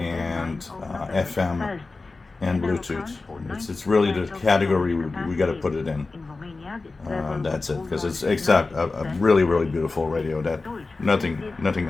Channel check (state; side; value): quieter; right; 3.7 dB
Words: FM and Bluetooth. It's really the category we got to put it in. That's it, because it's a really, really beautiful radio that nothing